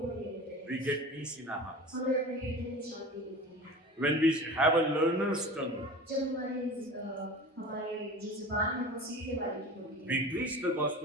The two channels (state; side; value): normal; both; correlation 0.36